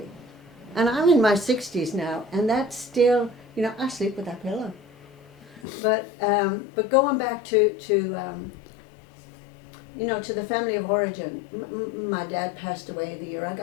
And I'm in my 60s now, and that's still, I sleep with that pillow. But going back to the family of origin, my dad passed away the year I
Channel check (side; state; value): right; drops out; at 5.6 s